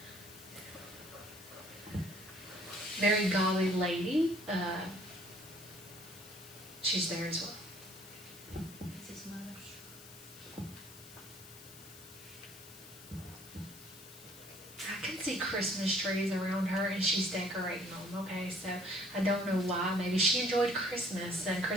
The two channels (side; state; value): left; noise; hiss, 17 dB below the sound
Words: Very golly lady. She's there as well. That's his mother. I can see Christmas trees around her, and she's decorating them, okay? So I don't know why. Maybe she enjoyed Christmas, and